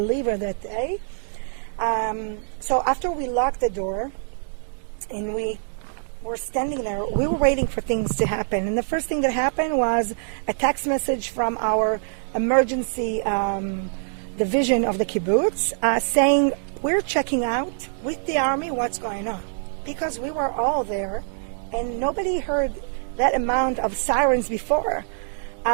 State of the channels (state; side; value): silent; left; digital silence